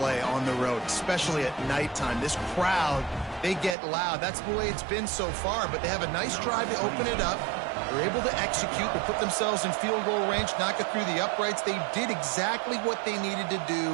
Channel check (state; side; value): drops out; left; at 3.8 s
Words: on the road, especially at nighttime. This crowd, they get loud. That's the way it's been so far, but they have a nice drive to open it up. They're able to execute, to put themselves in field goal range, knock it through the uprights. They did exactly what they needed to